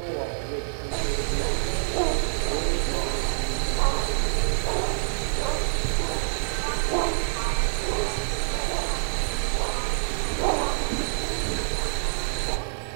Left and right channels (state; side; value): silent; left; digital silence